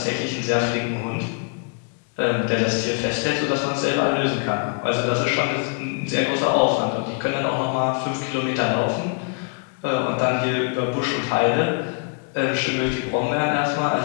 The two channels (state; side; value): quieter; right; 36.4 dB